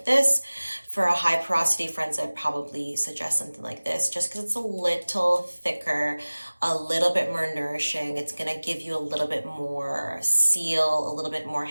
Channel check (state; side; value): inverted; both; correlation -1.00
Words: this. For a high porosity friends, I'd probably suggest something like this, just because it's a little thicker, a little bit more nourishing. It's gonna give you a little bit more seal, a little bit more